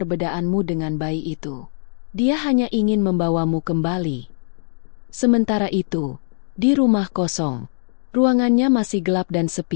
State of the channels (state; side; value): silent; right; digital silence